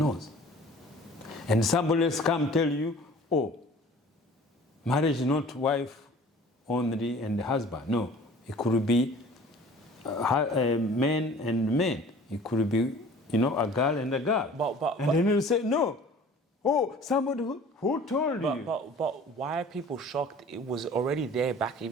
And somebody else come tell you, oh, marriage is not wife only and husband. No, it could be men and men. It could be, a girl and a girl. And then you say, no. Oh, somebody who told you? But why are people shocked? It was already there back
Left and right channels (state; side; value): normal; both; correlation 0.47